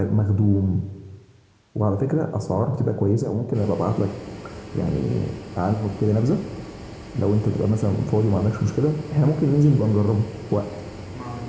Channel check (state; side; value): identical; both; correlation 1.00